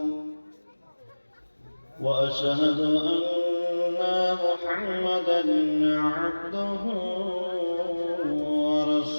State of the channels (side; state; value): both; inverted; correlation -1.00